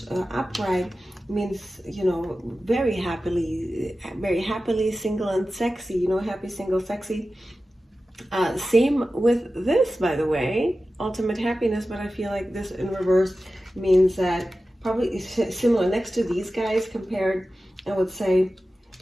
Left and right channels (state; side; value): normal; both; correlation 0.94